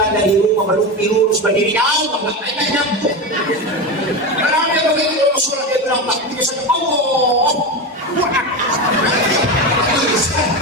dari rumah berlumpi lurus berdiri jauh, makanya nyampe. Karena dia begitu Rasulullah dia bilang takbirnya saja Allah.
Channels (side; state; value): both; normal; correlation 0.19